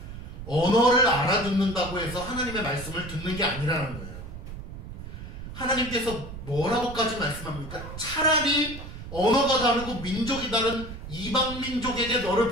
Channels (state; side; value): noise; right; rumble, 11 dB below the sound